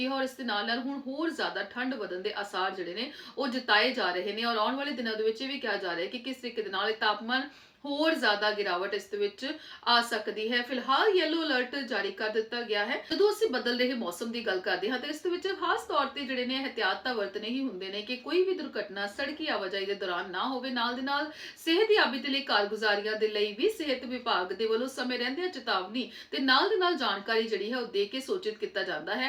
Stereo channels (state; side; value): identical; both; correlation 1.00